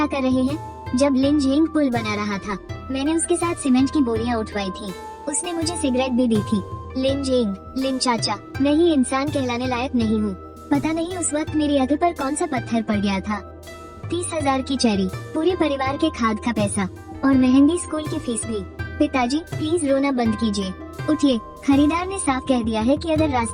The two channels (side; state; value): both; identical; correlation 1.00